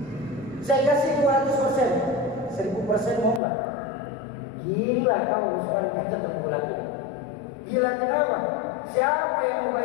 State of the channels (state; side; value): drops out; right; at 3.4 s